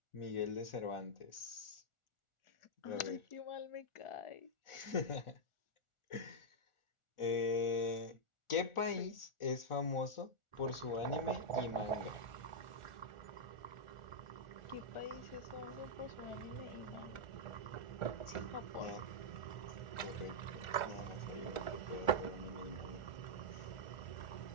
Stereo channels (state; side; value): late; right; 1.4 ms